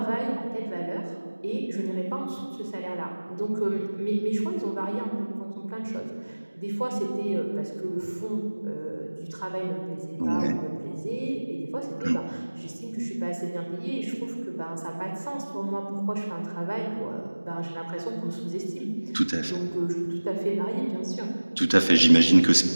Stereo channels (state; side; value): inverted; both; correlation -1.00